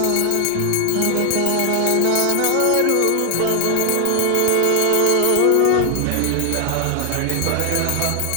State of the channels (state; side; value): different; both; correlation 0.00